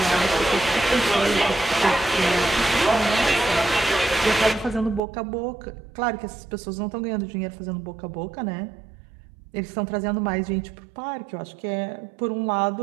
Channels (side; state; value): left; drops out; at 5.0 s